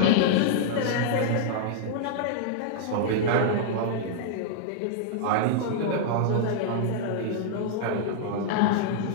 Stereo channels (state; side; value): different; both; correlation -0.01